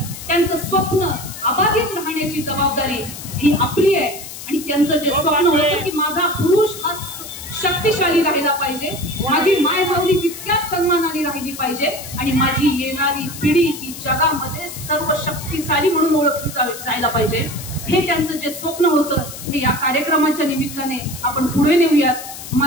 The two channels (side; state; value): left; noise; hiss, 12 dB below the sound